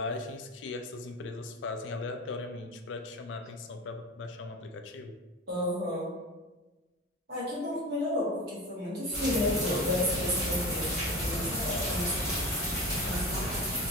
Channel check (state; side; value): normal; both; correlation 0.31